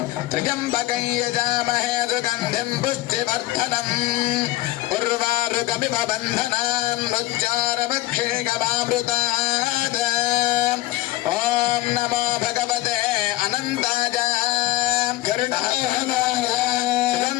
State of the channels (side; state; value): right; quieter; 16.9 dB